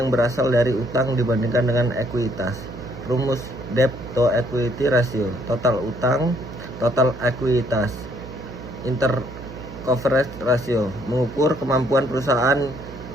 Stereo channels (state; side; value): noise; right; hum, 13 dB below the sound